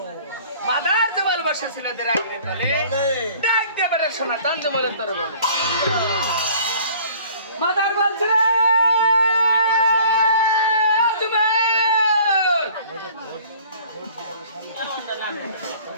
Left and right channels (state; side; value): inverted; both; correlation -0.51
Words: মাদার যে ভালোবাসা ছিল দেরাগিরি তলে ডাক দেবে শোনা তান যে বলেন তোর বলে মাদার বলছে রে